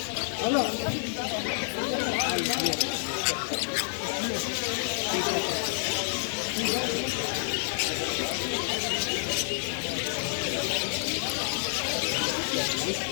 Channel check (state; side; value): silent; right; digital silence